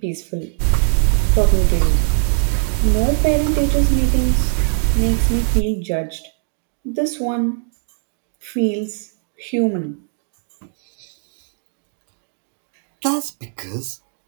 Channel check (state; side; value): silent; left; 59 dB below the other